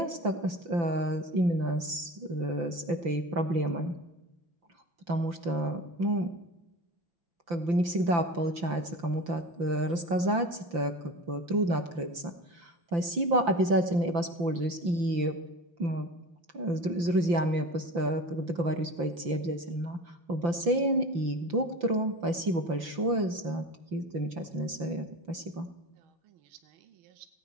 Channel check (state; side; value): late; left; 5.9 ms